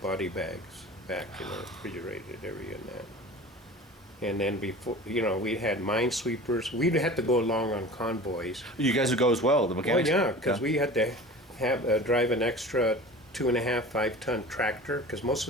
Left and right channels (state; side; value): normal; both; correlation 0.38